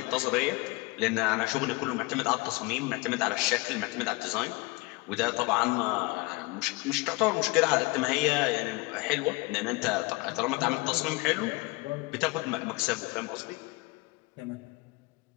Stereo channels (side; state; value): right; quieter; 24.1 dB